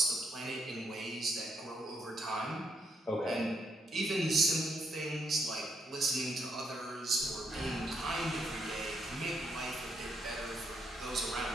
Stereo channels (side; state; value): both; normal; correlation 0.76